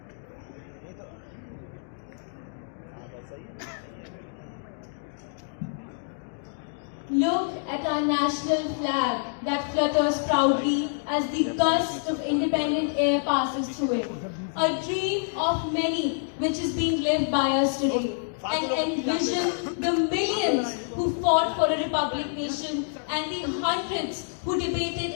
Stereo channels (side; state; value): right; silent; digital silence